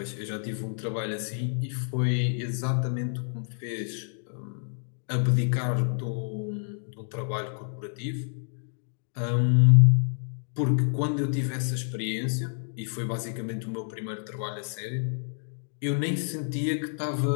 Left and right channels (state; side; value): silent; right; digital silence